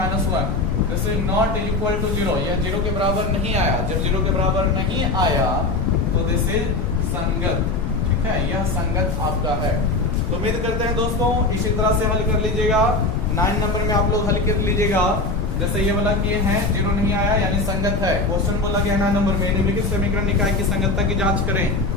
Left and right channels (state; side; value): noise; left; rumble, 3 dB below the sound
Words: this is not equal to 0। यह 0 के बराबर नहीं आया। जब 0 के बराबर नहीं आया तो दिस इज संगत। ठीक है, यह संगत आपका है। तो उम्मीद करते हैं दोस्तों इसी तरह से हल कर लीजिएगा। 9 नंबर में आप लोग हल कर लीजिएगा। जैसे ये वाला किए हैं, 0 नहीं आया यानी संगत है। क्वेश्चन बोला गया 9 नंबर में निम्नलिखित समीकरण निकाय की संगतता की जांच करें।